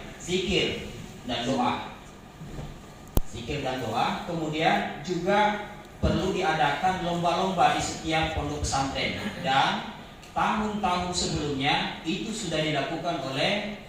zikir dan doa. Zikir dan doa. Kemudian juga perlu diadakan lomba-lomba di setiap pondok pesantren. Dan tahun-tahun sebelumnya itu sudah dilakukan oleh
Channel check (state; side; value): identical; both; correlation 1.00